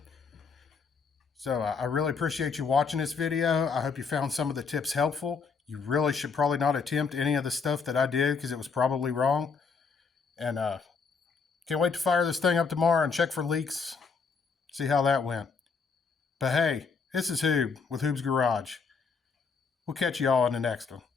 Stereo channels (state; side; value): quieter; right; 5.3 dB